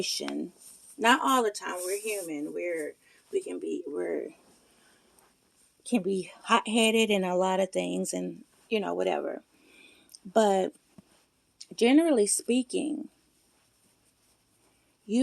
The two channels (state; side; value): identical; both; correlation 1.00